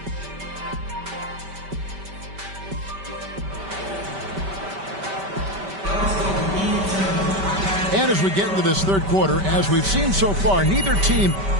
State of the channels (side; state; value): left; late; 5.1 ms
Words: And as we get into this third quarter, as we've seen so far, neither team